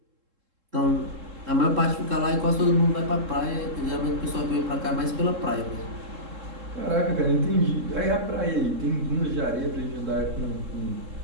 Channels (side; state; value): left; late; 3.7 ms